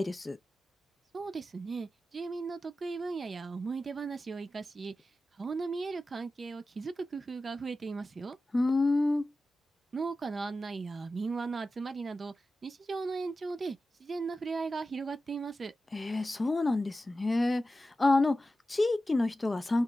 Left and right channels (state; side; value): normal; both; correlation 0.93